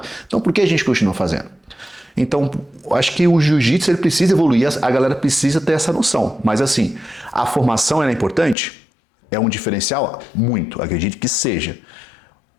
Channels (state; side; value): drops out; right; at 8.6 s